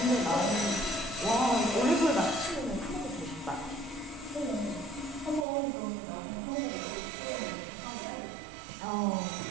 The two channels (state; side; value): drops out; left; at 5.5 s